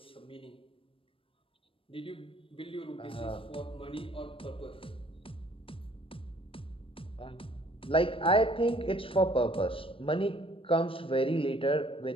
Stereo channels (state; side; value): late; right; 0.26 ms